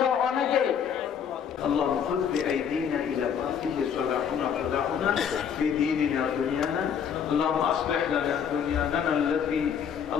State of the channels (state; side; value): quieter; right; 7.8 dB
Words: অনেকে। اللهم خذ بأيدينا إلى ما فيه صلاحنا صلاحنا في ديننا ودنيانا. اللهم أصلح لنا دنيانا التي